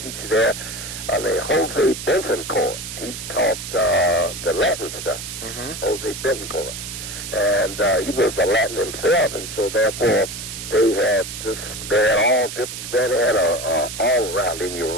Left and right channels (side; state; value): right; noise; hiss, 8 dB below the sound